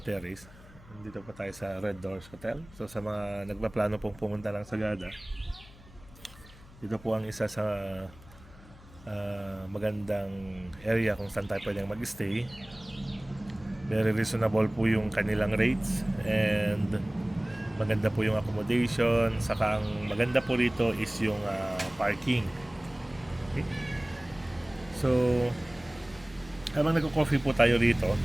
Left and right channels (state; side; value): noise; left; hum, 21 dB below the sound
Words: nandito po tayo sa Red Doors Hotel. So sa mga nagpaplano pong pumunta ng Sagada, dito po ang isa sa magandang area kung saan tayo pwedeng mag-stay. Very reasonable po yung kanilang rates and maganda po yung accommodation. Saka ang maganda po rito is yung parking. Okay? So habang nagko-coffee po tayo rito,